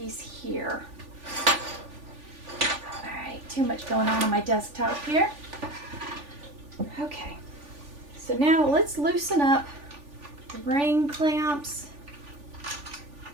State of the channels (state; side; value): late; left; 3.4 ms